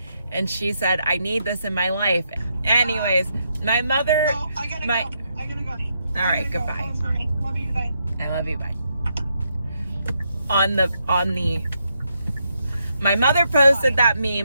And she said, I need this in my life. Anyways, my mother... Oh, I gotta go. All right, goodbye. Love you, bye. I love you, bye. My mother posted that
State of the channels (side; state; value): both; inverted; correlation -0.80